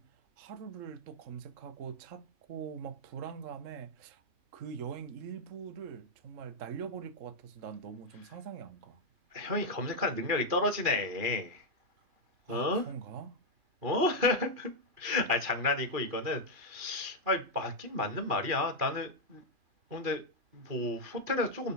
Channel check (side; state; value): left; late; 2.5 ms